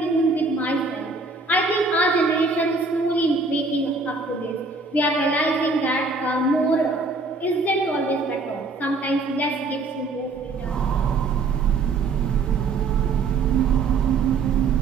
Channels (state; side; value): quieter; left; 3.8 dB